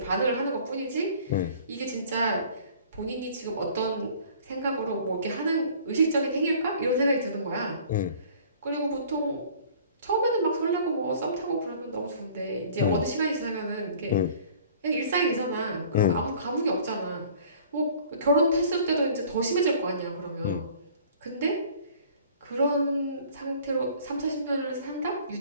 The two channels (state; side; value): inverted; both; correlation -0.51